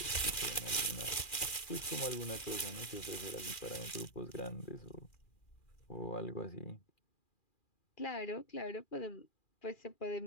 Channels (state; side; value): late; right; 2.4 ms